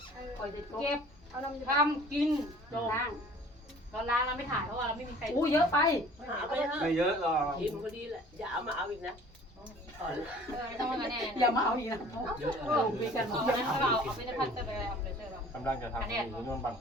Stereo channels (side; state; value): both; normal; correlation 0.49